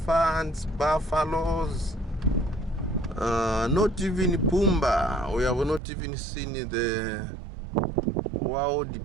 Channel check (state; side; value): drops out; left; at 5.8 s